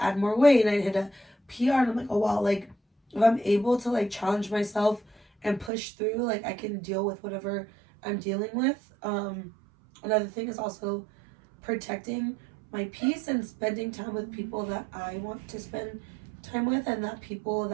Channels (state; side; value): drops out; left; at 5.7 s